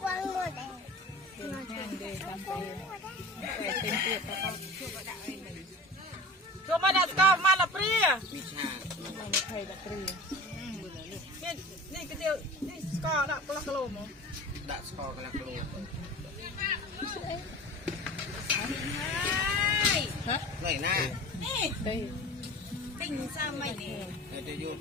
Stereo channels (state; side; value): normal; both; correlation 0.37